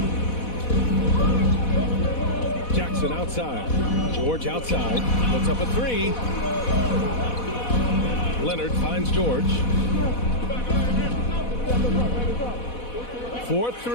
Jackson outside. George outside. Puts up a 3. Leonard finds George.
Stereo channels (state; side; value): late; right; 4.1 ms